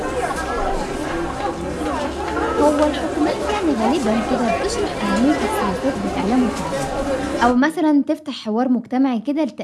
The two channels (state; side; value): identical; both; correlation 1.00